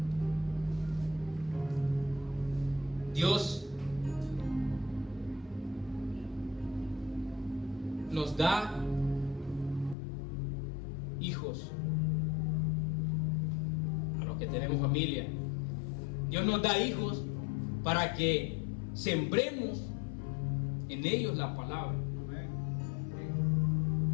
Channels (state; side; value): drops out; right; at 10.0 s